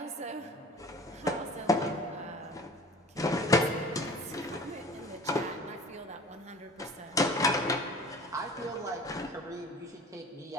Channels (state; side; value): normal; both; correlation 0.44